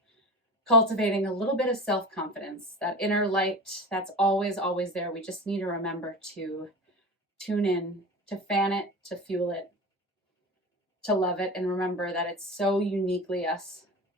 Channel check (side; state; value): both; normal; correlation 0.30